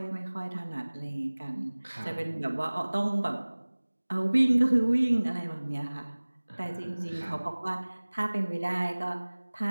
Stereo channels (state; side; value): inverted; both; correlation -1.00